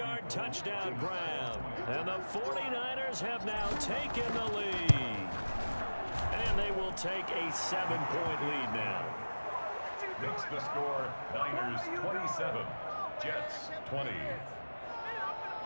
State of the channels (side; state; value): both; inverted; correlation -1.00